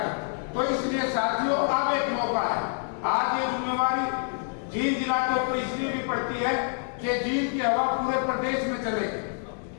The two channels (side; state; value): right; silent; 60 dB below the other